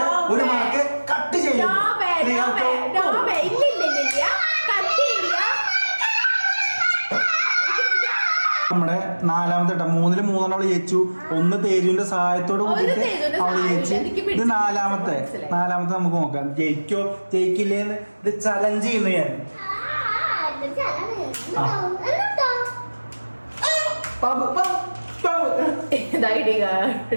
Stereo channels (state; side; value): inverted; both; correlation -1.00